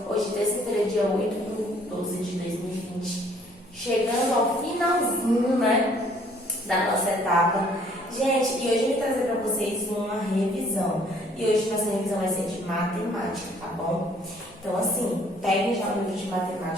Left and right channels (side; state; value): both; normal; correlation 0.60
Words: hoje terça-feira, dia 8/12/2020, chegando ao finalzinho, né, da nossa etapa. Gente, e hoje eu vim trazer para vocês uma revisão, e hoje nossa revisão vai ser de matemática, tá bom? Então, assim, peguem já o livro de